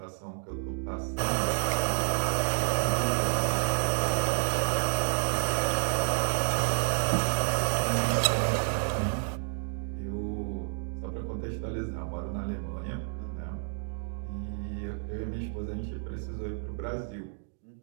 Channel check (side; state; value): left; silent; digital silence